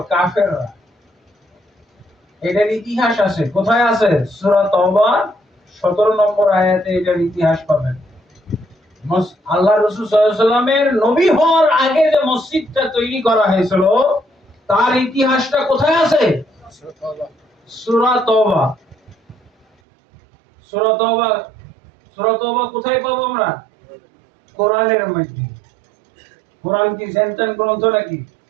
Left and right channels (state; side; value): drops out; left; at 19.7 s